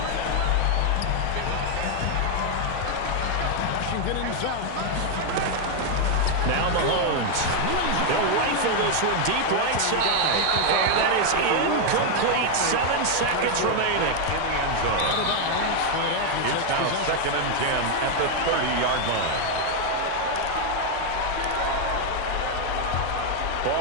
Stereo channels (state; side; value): different; both; correlation 0.01